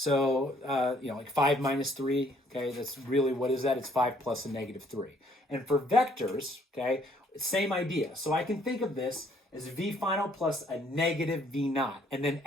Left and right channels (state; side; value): normal; both; correlation 0.64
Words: like 5 minus 3, okay, that's really, what is that? It's 5 plus a negative 3. And for vectors, okay, same idea. So I can think of this as V final plus a negative V naught, and then